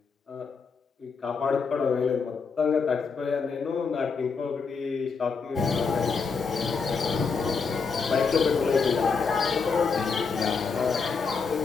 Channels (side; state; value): right; quieter; 5.2 dB